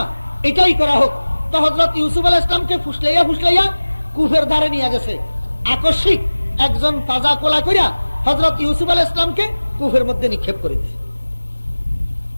এটাই করা হোক। তো হযরত ইউসুফ আলাইহিস সালামকে ফুসলাইয়া ফুসলাইয়া কূপের ধারে নিয়ে গেছে। আকস্মিক একজন তাজা কোলা কইরা হযরত ইউসুফ আলাইহিস সালামকে কূপের মধ্যে নিক্ষেপ করে দিয়েছে।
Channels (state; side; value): inverted; both; correlation -1.00